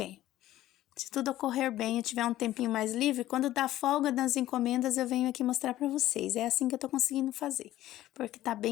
Se tudo ocorrer bem e tiver um tempinho mais livre, quando dá folga das encomendas, eu venho aqui mostrar pra vocês. É assim que eu tô conseguindo fazer, porque tá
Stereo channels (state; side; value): quieter; right; 14.4 dB